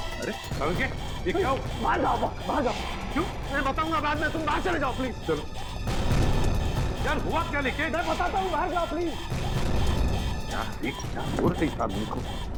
अरे ये क्या? बाहर जाओ। क्यों? मैं बताऊंगा बाद में, तुम बाहर चले जाओ प्लीज। चलो यार, हुआ क्या? लेके मैं बताता हूँ, बाहर जाओ प्लीज। क्या हो रही इस आदमी को?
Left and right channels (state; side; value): identical; both; correlation 1.00